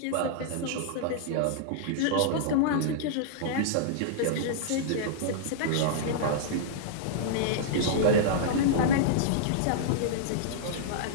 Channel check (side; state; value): both; different; correlation -0.02